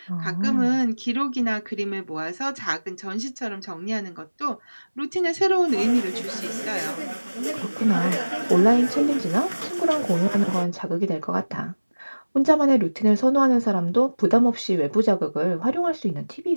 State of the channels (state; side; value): inverted; both; correlation -1.00